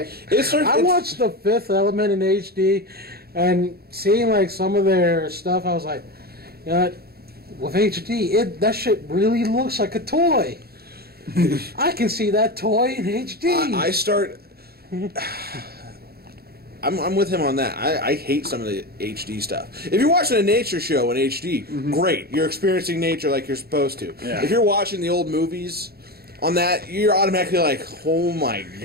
watched The Fifth Element in HD, and seeing some of their stuff, I was like, with HD, that shit really looks like a toy. I can see that toy in HD. I'm with him on that. I hate some of the HD stuff. If you're watching a nature show in HD, great. You're experiencing nature like you're supposed to. Yeah. If you're watching the old movies on that, you're automatically like, oh my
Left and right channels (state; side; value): late; left; 0.45 ms